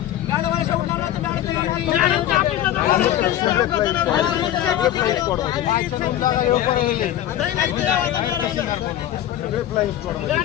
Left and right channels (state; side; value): quieter; right; 12.2 dB